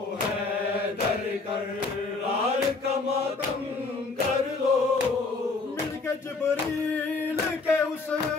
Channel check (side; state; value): right; quieter; 3.9 dB